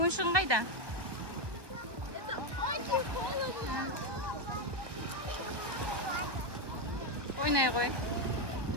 қайда? Ойнай ғой.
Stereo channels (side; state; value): left; late; 1.2 ms